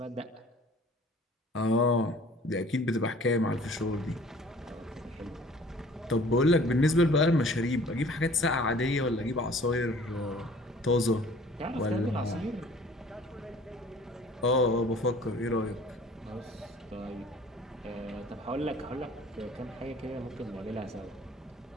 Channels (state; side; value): normal; both; correlation 0.51